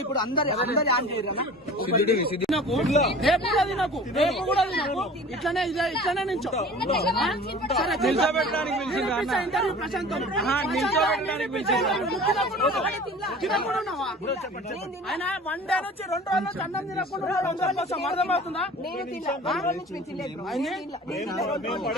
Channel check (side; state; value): both; normal; correlation 0.42